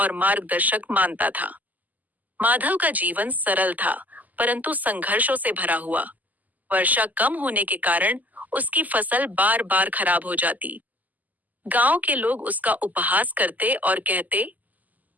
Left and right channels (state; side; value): late; left; 0.081 ms